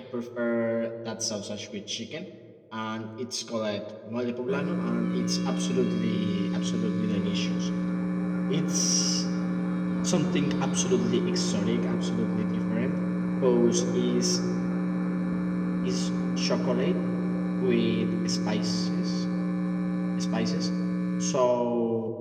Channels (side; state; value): both; identical; correlation 1.00